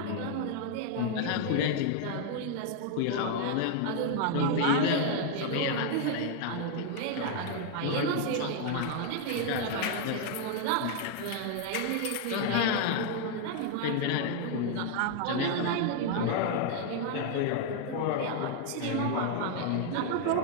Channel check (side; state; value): both; different; correlation 0.00